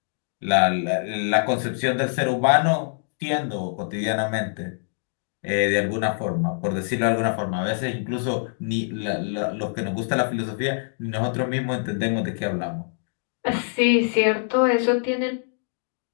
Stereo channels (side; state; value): right; silent; digital silence